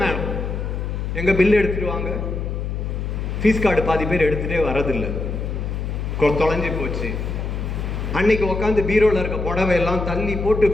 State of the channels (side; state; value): left; noise; hum, 3 dB below the sound